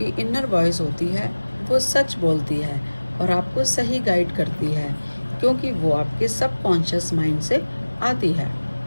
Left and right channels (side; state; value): both; inverted; correlation -1.00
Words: इनर वॉइस होती है वो सच बोलती है और आपको सही गाइड करती है, क्योंकि वो आपके सबकॉन्शियस माइंड से आती है।